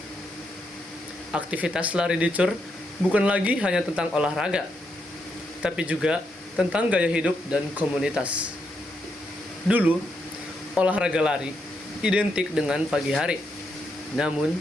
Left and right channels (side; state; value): both; normal; correlation 0.80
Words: Aktivitas lari di CUR bukan lagi hanya tentang olahraga, tapi juga tentang gaya hidup dan komunitas. Dulu, olahraga lari identik dengan pagi hari. Namun,